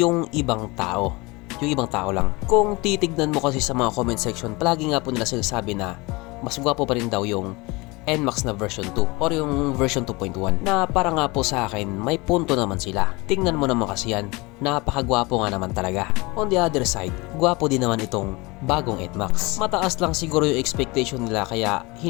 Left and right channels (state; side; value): quieter; right; 24.5 dB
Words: ibang tao. Yung ibang tao lang. Kung titignan mo kasi sa mga comment section, palagi nga po nila sinasabi na mas gwapo pa rin daw yung NMAX na version 2 or yung version 2.1 na para nga po sa akin may punto naman sila. Tingnan mo naman kasi yan, napakagwapo nga naman talaga. On the other side, gwapo din naman itong bagong NMAX. Mataas lang siguro yung expectation nila kaya